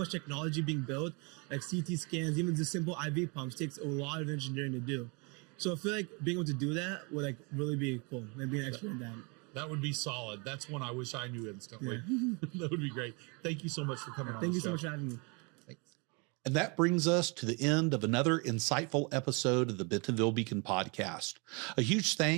technology being built, like CT scans, even the simple IV pumps takes a lot of engineering to do. So I feel like being able to do that would like really be cool, and being an expert in that. That would be solid. That's one I wish I knew instantly. Yeah. That would be great. Thank you so much for coming on. Thank you so much for having me. Thanks. And that brings us to the end of another insightful episode of the Bentonville Beacon podcast. A huge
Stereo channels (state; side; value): quieter; left; 31.5 dB